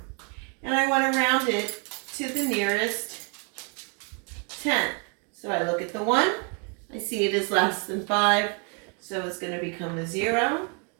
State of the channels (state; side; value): quieter; left; 37.7 dB